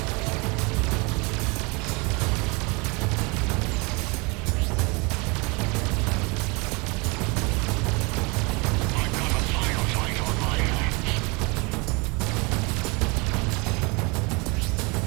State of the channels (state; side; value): quieter; left; 28.6 dB